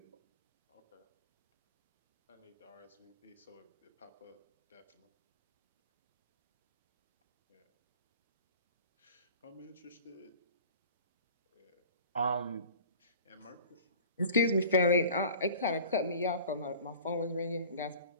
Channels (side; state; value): both; inverted; correlation -0.43